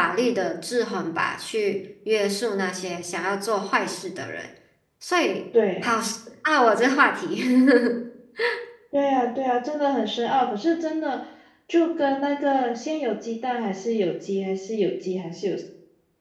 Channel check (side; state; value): both; identical; correlation 1.00